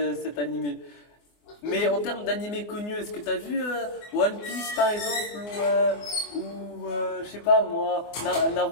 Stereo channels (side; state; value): right; late; 24 ms